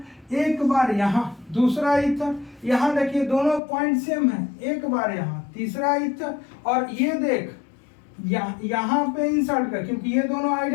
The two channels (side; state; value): right; drops out; at 3.6 s